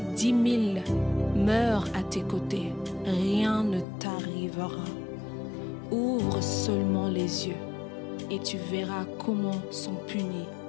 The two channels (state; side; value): drops out; right; at 3.9 s